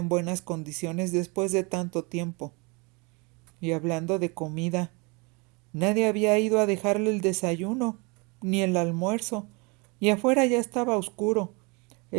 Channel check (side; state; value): left; quieter; 29.5 dB